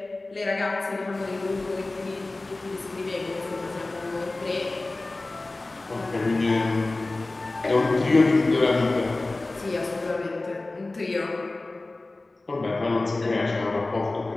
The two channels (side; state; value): right; quieter; 3.1 dB